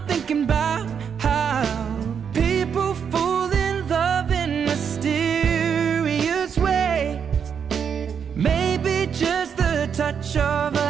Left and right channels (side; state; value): left; quieter; 7.3 dB